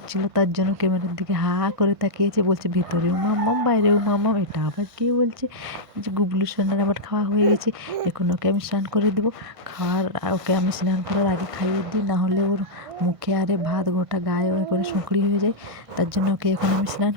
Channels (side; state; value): left; late; 1.5 ms